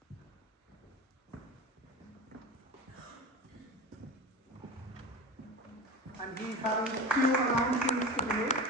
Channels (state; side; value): normal; both; correlation 0.27